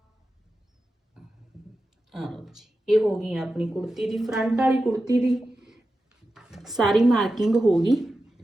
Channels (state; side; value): normal; both; correlation 0.92